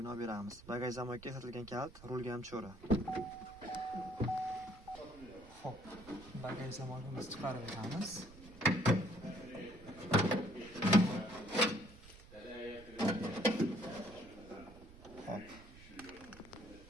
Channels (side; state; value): right; noise; rumble, 19 dB below the sound